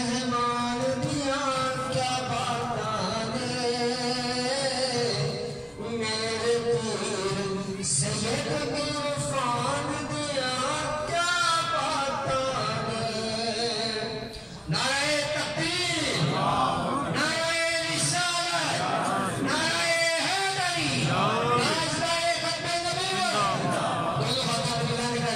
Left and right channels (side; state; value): both; identical; correlation 1.00